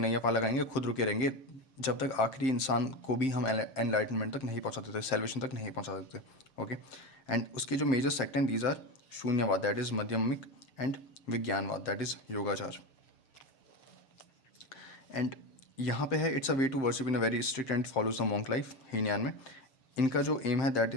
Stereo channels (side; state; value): right; late; 7.6 ms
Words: पार लगाएंगे, खुद रुके रहेंगे जब तक आखिरी इंसान को भी हम एनलाइटनमेंट तक नहीं पहुंचा देते, सेल्वेशन तक नहीं पहुंचा देते. ओके. एंड उसके जो मेजर सेक्ट हैं these are Shunyavada, that is Madhyamika, and Vijnanavada, that is Yogachara. And यहाँ पे है it's a way to worship in a very strict and follows the monk life. Hinayana में इनका जो एम है that